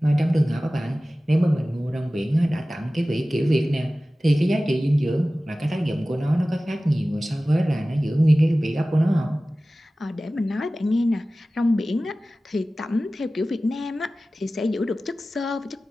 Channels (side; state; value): both; normal; correlation 0.96